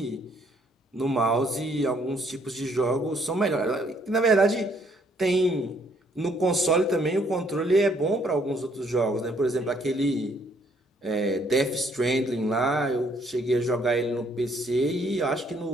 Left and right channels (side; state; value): both; normal; correlation 0.66